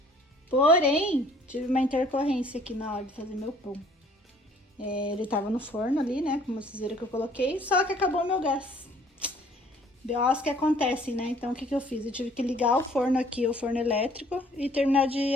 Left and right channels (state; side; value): normal; both; correlation 0.57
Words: Porém, tive uma intercorrência aqui na hora de fazer meu pão. Ele tava no forno ali, né, como vocês viram que eu coloquei, só que acabou o meu gás. BOs que acontecem, né? Então, o que eu fiz? Eu tive que ligar o forno aqui, o forno elétrico, e terminar de